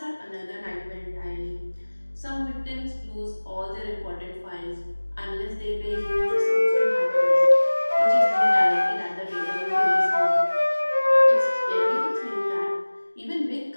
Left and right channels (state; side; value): inverted; both; correlation -1.00